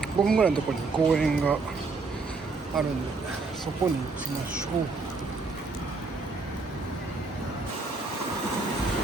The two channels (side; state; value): left; quieter; 4.0 dB